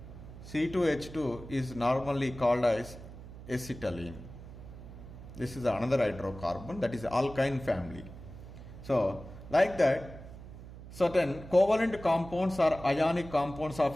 C2H2 is normally called as acetylene. This is another hydrocarbon, that is alkyne family. So, like that, certain covalent compounds or ionic compounds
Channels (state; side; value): noise; right; hum, 14 dB below the sound